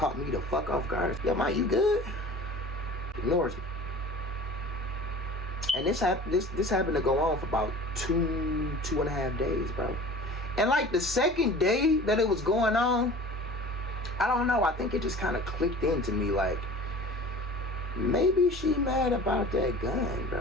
me the fuck off guard. Yo, Ma, you good? Ignores me. And this happened to go on for about two and a half days, bro. And like the second day that it was going on, I don't know, I think it just kind of clicked into me, like, maybe she mad about that gun,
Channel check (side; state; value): both; normal; correlation 0.41